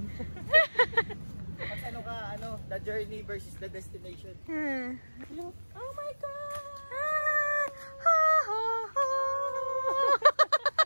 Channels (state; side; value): inverted; both; correlation -1.00